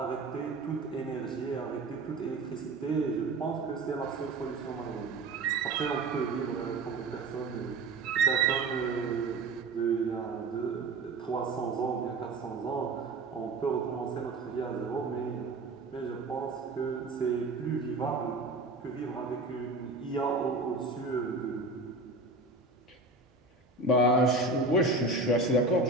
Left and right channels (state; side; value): quieter; left; 3.3 dB